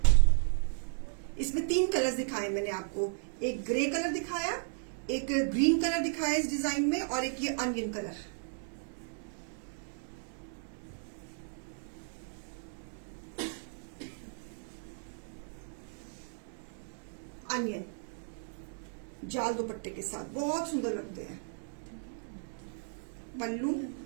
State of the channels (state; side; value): silent; left; digital silence